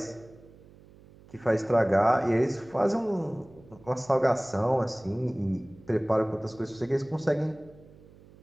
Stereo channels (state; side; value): noise; right; hum, 24 dB below the sound